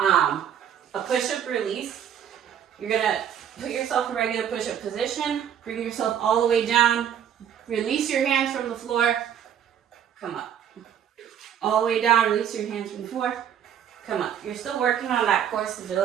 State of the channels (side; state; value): left; quieter; 9.2 dB